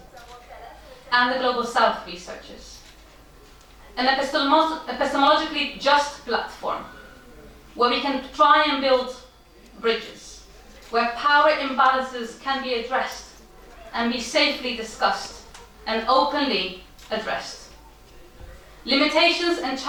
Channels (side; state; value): both; identical; correlation 1.00